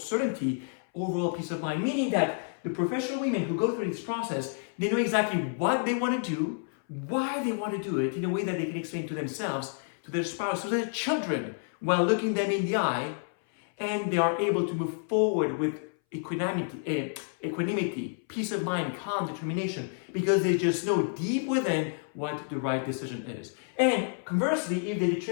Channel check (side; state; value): right; silent; 58 dB below the other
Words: overall peace of mind. Meaning that the professional women who go through this process, they know exactly what they want to do, why they want to do it, in a way that they can explain to themselves, to their spouse, to their children, while looking them in the eye, and they are able to move forward with equanimity, peace of mind, calm, determination, because they just know deep within what the right decision is. And conversely, if they